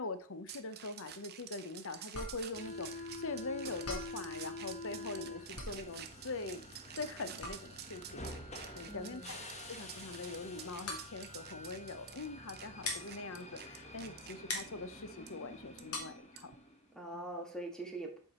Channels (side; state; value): both; normal; correlation -0.10